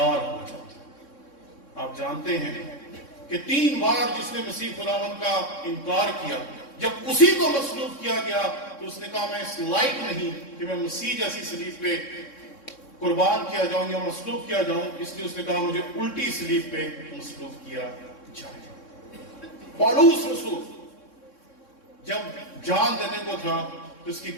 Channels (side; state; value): right; late; 3.6 ms